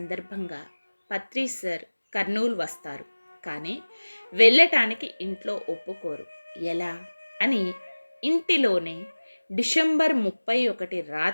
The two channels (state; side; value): inverted; both; correlation -1.00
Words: పత్రి సార్ కర్నూలు వస్తారు. కానీ వెళ్ళటానికి ఇంట్లో ఒప్పుకోరు. ఎలా అని ఇంటిలోనే డిసెంబర్ 31